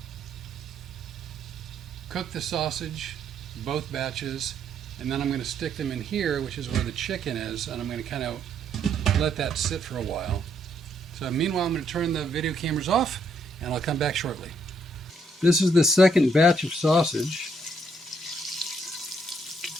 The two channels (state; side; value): normal; both; correlation 0.72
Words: cook the sausage both batches, and then I'm going to stick them in here, which is where the chicken is, and I'm going to kind of let that sit for a while. So meanwhile, I'm going to turn the video cameras off, and I'll come back shortly. This is the second batch of sausage.